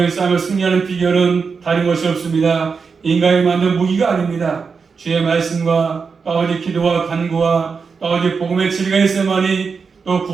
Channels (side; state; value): left; quieter; 5.3 dB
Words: 싸움을 승리하는 비결은 다른 것이 없습니다. 인간이 만든 무기가 아닙니다. 주의 말씀과 아버지 기도와 간구와 아버지 복음의 진리가 있어야만이 또